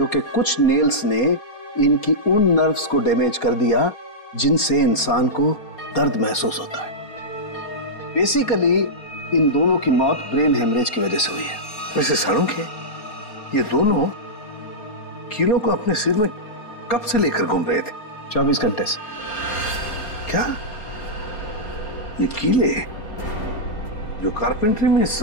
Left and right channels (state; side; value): late; right; 4.3 ms